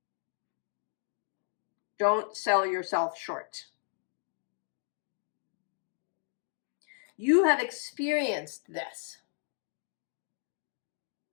Don't sell yourself short. You have experienced this.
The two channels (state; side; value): silent; right; 55 dB below the other